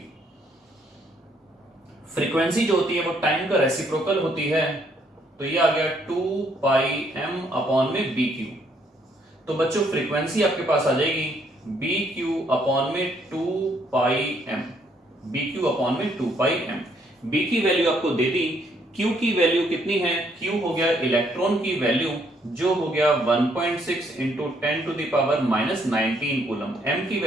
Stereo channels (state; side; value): normal; both; correlation 0.69